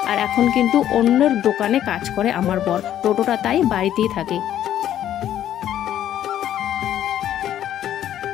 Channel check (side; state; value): right; quieter; 11.3 dB